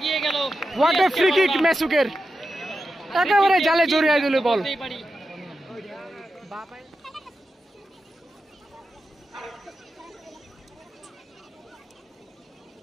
গেল। হোয়াট এ ফ্রি কিক মেসুকের, একেবারে জালে জড়িয়ে দিল বল।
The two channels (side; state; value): both; normal; correlation 0.90